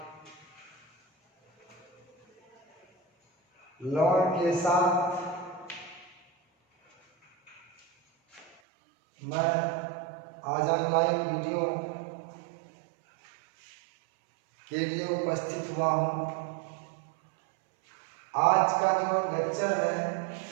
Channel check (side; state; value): left; drops out; at 8.6 s